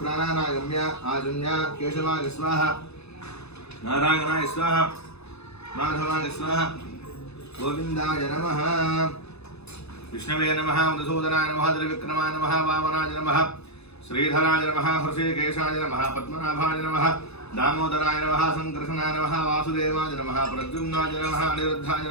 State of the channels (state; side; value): late; right; 0.79 ms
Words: ప్రాణానాగమ్య ఆజన్య కేశవాయ స్వాహ నారాయణాయ స్వాహ మాధవాయ స్వాహ గోవిందాయ నమః విష్ణవే నమః మధుసూదనాయ నమః త్రివిక్రమాయ నమః వామనాయ నమః श्रीधराय नमः हृषिकेशाय नमः पद्मनाभाय नमः दामोदराय नमः संकर्षणाय नमः वासुदेवाय नमः प्रद्युम्नाय नमः अनिरुद्धाय